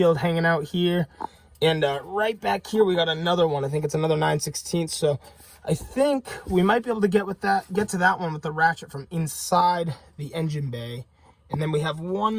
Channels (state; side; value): identical; both; correlation 1.00